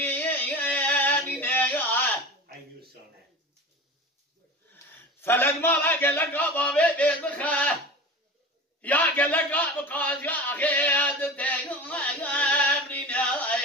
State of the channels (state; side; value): normal; both; correlation 0.32